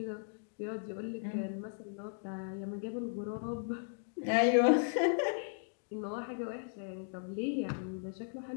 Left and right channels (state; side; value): silent; right; digital silence